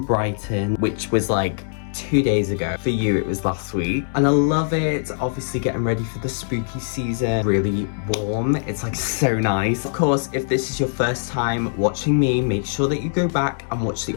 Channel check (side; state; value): right; silent; digital silence